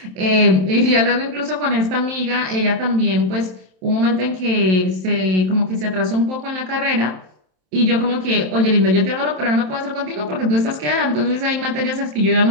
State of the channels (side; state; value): left; late; 27 ms